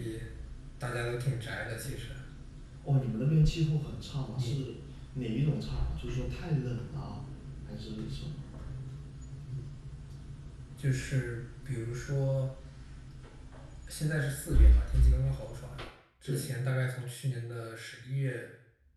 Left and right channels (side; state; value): both; identical; correlation 1.00